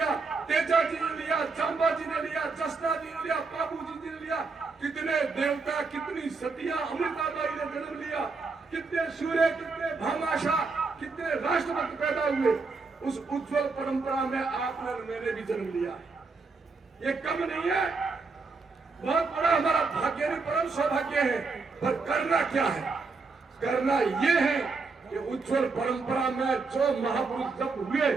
तेजा जी ने लिया, चांबा जी ने लिया, जसना जी ने लिया, बाबू जी ने लिया। कितने देवता, कितनी सतियां, अमृताबाई ने जन्म लिया, कितने सूर्य, कितने भामाशाह, कितने राष्ट्रभक्त पैदा हुए। उस उज्जवल परंपरा में आपने, मैंने भी जन्म लिया। ये कम नहीं है, बहुत बड़ा हमारा भाग्य नहीं, परम सौभाग्य है। पर करना क्या है? करना ये है कि उज्जवल परंपरा में जो महापुरुष जब हुए,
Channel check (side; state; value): left; quieter; 4.3 dB